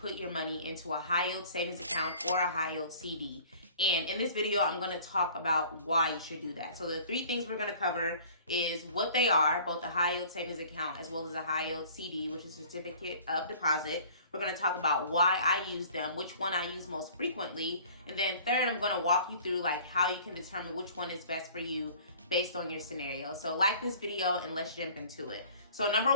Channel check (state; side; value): inverted; both; correlation -0.49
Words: your money into a high yield savings account or a high yield CD. And in this video, I'm going to talk about why you should do that. So the three things we're going to cover is what they are, both a high yield savings account as well as a high yield CD, which is certificate of deposit. We're going to talk about why I use them, which one I use most frequently. And then third, I'm going to walk you through like how you can determine which one is best for you based on your scenario. So like this video and let's jump into it. So number